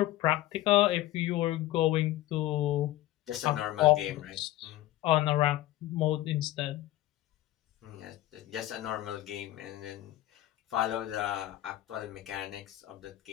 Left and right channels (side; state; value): right; quieter; 15.3 dB